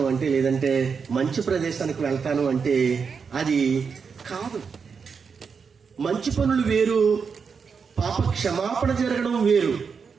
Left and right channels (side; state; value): left; quieter; 5.8 dB